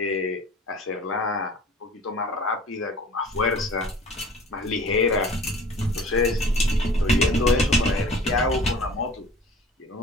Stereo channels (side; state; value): both; normal; correlation 0.45